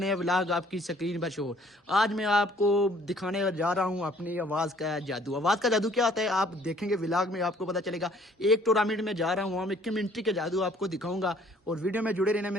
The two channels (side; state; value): both; normal; correlation 0.59